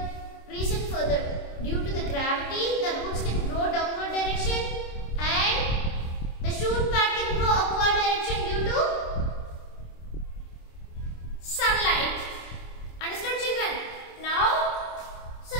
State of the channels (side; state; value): right; late; 26 ms